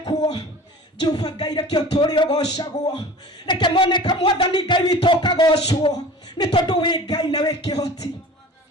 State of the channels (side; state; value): both; normal; correlation 0.40